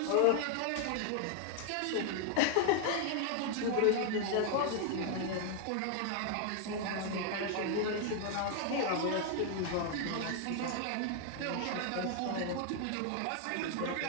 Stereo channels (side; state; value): both; different; correlation 0.00